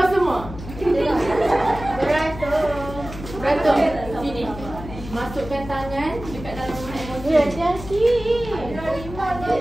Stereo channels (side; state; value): left; noise; hum, 12 dB below the sound